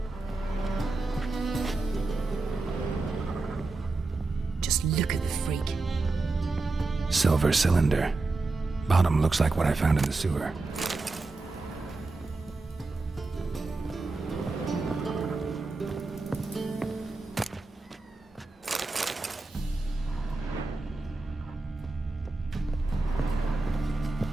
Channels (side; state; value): left; quieter; 3.5 dB